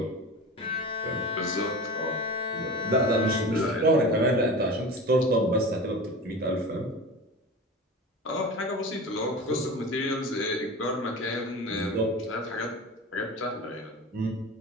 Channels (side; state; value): both; normal; correlation 0.32